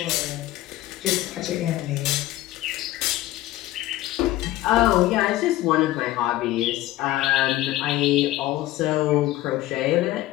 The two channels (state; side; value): quieter; right; 16.0 dB